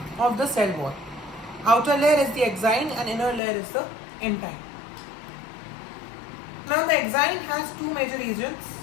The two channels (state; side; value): drops out; right; at 3.4 s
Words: of the cell wall. Outer layer is the exine and inner layer is the intine. Now the exine has two major regions